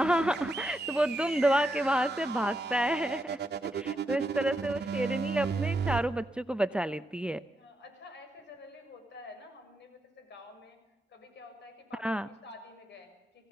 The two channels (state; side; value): normal; both; correlation 0.83